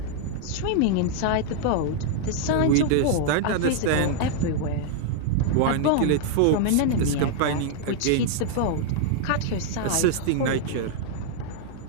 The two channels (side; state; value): both; different; correlation -0.01